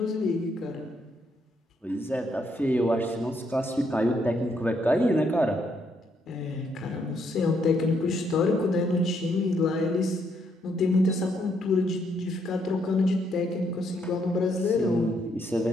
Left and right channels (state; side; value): normal; both; correlation 0.74